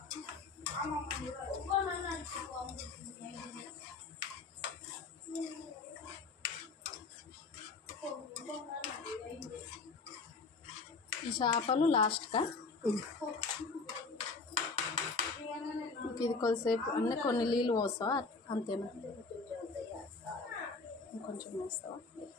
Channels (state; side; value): quieter; right; 4.2 dB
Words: ఈ చేపలు లాస్ట్గా ఇది కొద్దిసేపు అన్నీ కొన్ని నీళ్ళు పోస్తావా అంతేనా? ఇంకొంచెం వేస్తావా?